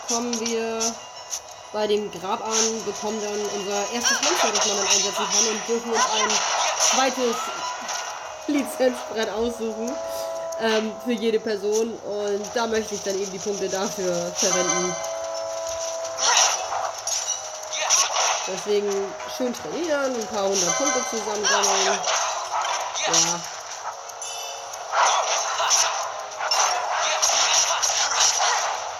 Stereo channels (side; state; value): both; identical; correlation 1.00